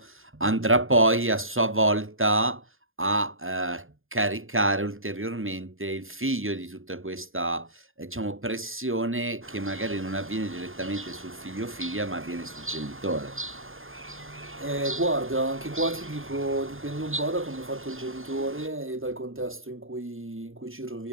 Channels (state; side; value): late; left; 0.59 ms